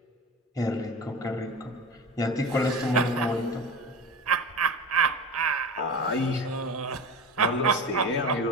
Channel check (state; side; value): normal; both; correlation 0.31